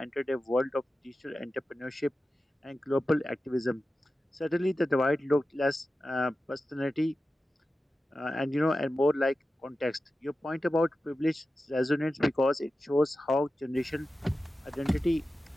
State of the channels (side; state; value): both; normal; correlation 0.93